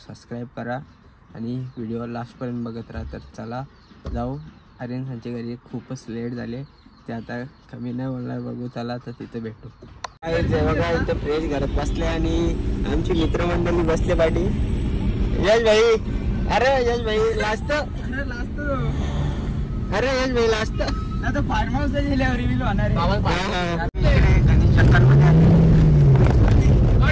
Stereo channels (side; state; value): both; identical; correlation 1.00